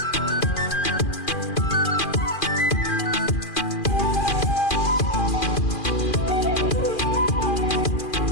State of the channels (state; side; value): late; right; 2.4 ms